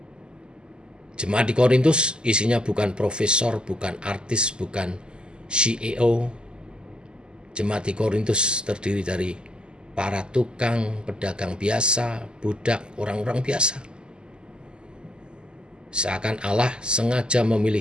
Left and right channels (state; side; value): late; left; 0.048 ms